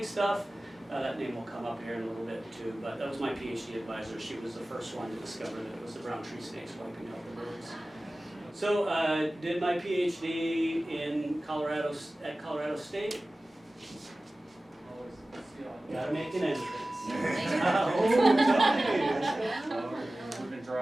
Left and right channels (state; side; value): normal; both; correlation 0.97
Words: stuff, that name will come up here in a little bit too. But that was my PhD advisor. She was the first one to discover that it was the brown tree snakes wiping out the birds. So I did my PhD in Colorado State. Gotta make an entrance. We've been